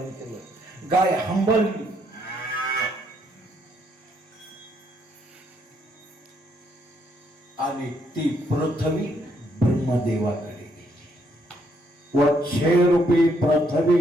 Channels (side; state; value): both; normal; correlation 0.72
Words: केलं. गाय हंबरली. आणि ती पृथ्वी ब्रह्मदेवाकडे गेली. वच्छे रूपी